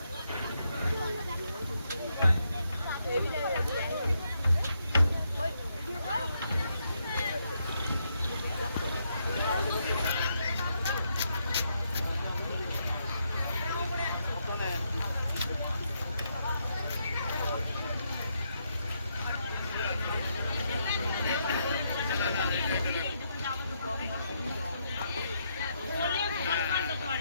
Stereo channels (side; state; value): both; inverted; correlation -0.78